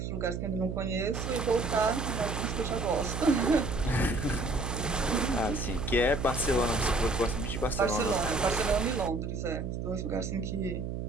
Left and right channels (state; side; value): noise; right; hum, 4 dB below the sound